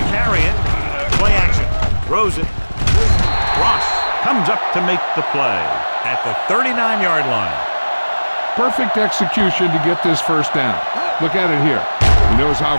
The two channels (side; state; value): both; inverted; correlation -1.00